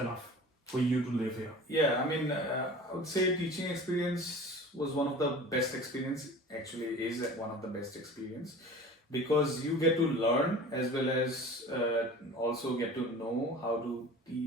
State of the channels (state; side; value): normal; both; correlation 0.40